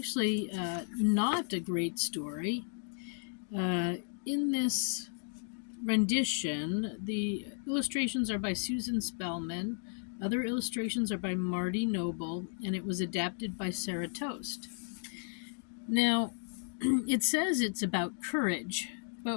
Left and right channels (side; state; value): right; silent; 55 dB below the other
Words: not a great story. In this rendition, the illustrations are by Susan Spellman, other illustrations are by Marty Noble, and it was adapted by Sarah Toast. Now, it says it's about courage,